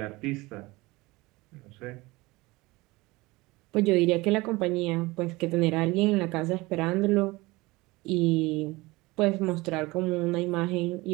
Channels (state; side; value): quieter; left; 21.8 dB